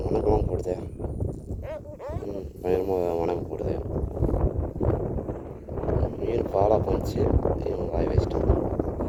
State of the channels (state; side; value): identical; both; correlation 1.00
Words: வணக்கமாக போடுது. பயங்கரமாக வணக்கம் போடுது. மீன் பாலா பண்ணிச்சு, இவன் வாய் வச்சிட்டான்.